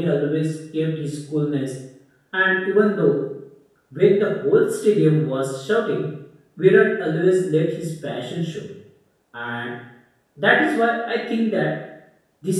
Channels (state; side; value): identical; both; correlation 1.00